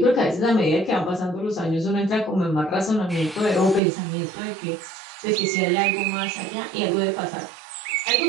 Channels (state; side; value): drops out; left; at 3.8 s